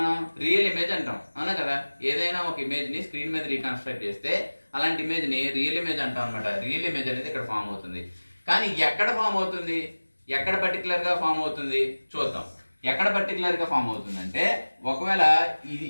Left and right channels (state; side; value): inverted; both; correlation -1.00